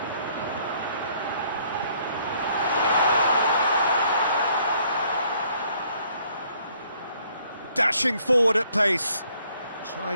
Dashing forward at pace.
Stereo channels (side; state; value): both; inverted; correlation -0.64